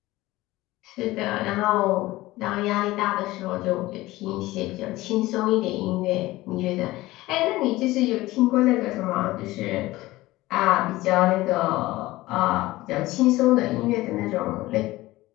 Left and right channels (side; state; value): right; quieter; 18.3 dB